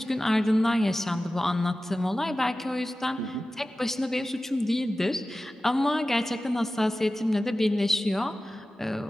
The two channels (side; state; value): both; normal; correlation 0.95